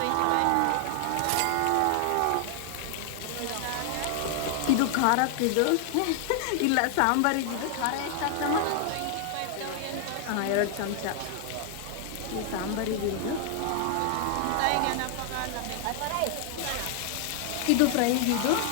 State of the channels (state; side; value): different; both; correlation 0.00